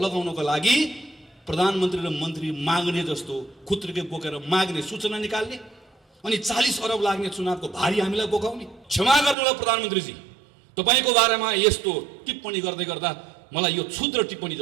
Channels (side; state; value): left; drops out; at 9.3 s